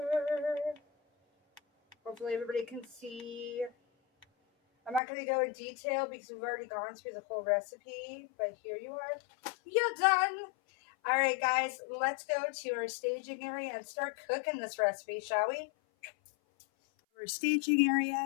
Hopefully everybody can see. I'm not going to go in detail because we've already gone through the whole recipe, but here you are. You're done. All right, guys, let's go to our staging area and start cooking this recipe, shall we? Our staging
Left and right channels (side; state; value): right; drops out; at 5.0 s